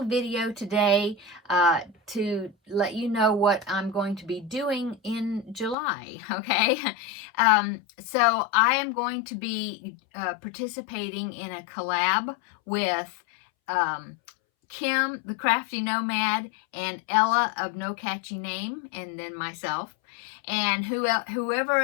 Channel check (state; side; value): drops out; right; at 5.8 s